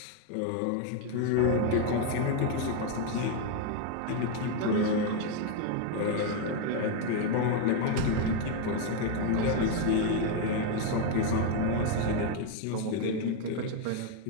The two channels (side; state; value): both; different; correlation 0.01